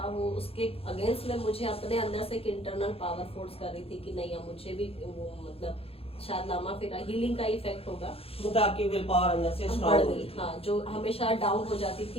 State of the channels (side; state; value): right; late; 0.28 ms